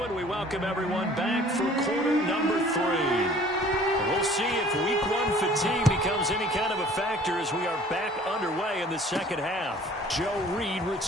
and we welcome everyone back for quarter number 3. We'll see if week 1 fatigue becomes any kind of a factor as we are back underway in the second half. Joe Reed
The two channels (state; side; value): normal; both; correlation 0.51